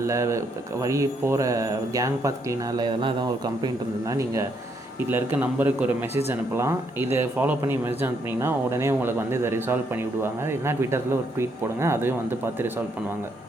இல்லை வழி போகிற கேங் பாத் க்ளீனாக இல்லை இதெல்லாம் ஏதாவது ஒரு கம்ப்ளைண்ட் இருந்ததுன்னா நீங்கள் இதில் இருக்க நம்பருக்கு ஒரு மெசேஜ் அனுப்பலாம். இதை ஃபாலோ பண்ணி மெசேஜ் அனுப்புனீங்கன்னா உடனே உங்களுக்கு வந்து இதை ரிசால்வ் பண்ணி விடுவாங்க. இல்லைனா ட்விட்டரில் ஒரு ட்வீட் போடுங்க, அதையும் வந்து பார்த்து ரிசால்வ் பண்ணுவாங்க.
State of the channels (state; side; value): normal; both; correlation 0.74